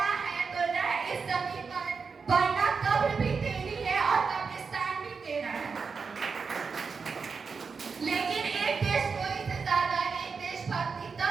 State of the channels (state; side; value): quieter; left; 5.2 dB